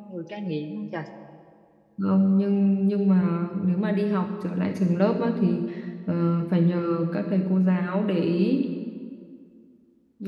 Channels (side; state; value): both; identical; correlation 1.00